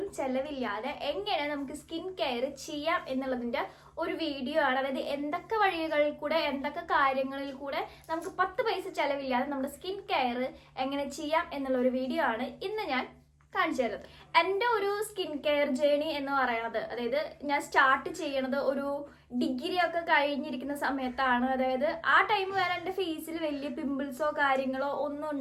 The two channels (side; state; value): both; identical; correlation 1.00